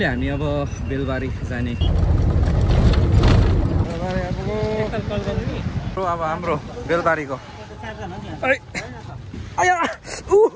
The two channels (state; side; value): identical; both; correlation 1.00